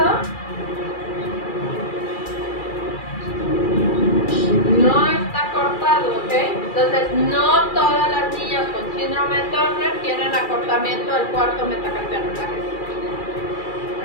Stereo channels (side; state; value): right; late; 2.3 ms